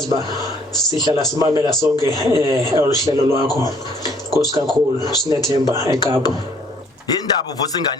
ba sihlala simamela sonke oluhlelo lwakho Nkosi kakhulu sinethemba eKapa Indaba uvusa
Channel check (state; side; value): normal; both; correlation 0.61